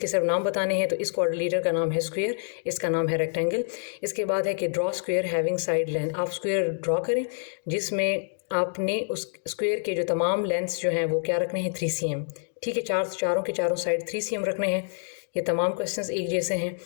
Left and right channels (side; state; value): right; silent; digital silence